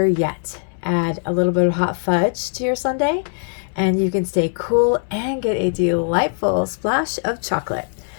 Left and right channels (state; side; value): silent; right; 65 dB below the other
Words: yet, add a little bit of hot fudge to your sundae and you can stay cool and get a delightful splash of chocolate.